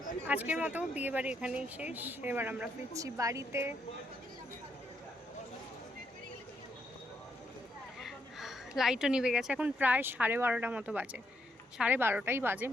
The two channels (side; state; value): both; normal; correlation 0.77